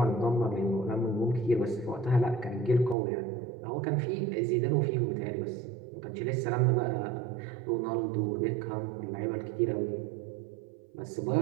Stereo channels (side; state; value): left; drops out; at 3.0 s